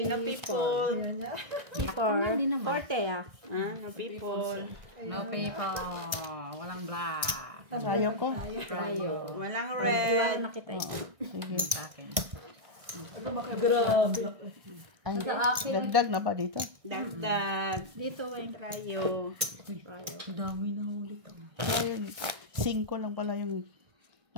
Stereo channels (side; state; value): left; late; 1.6 ms